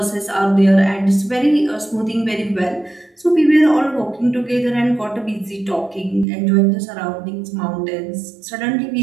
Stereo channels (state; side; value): drops out; left; at 6.2 s